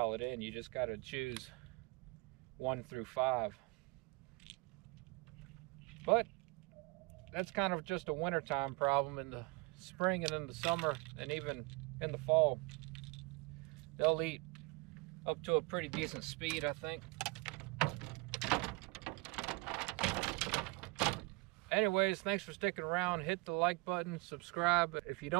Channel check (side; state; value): left; quieter; 27.7 dB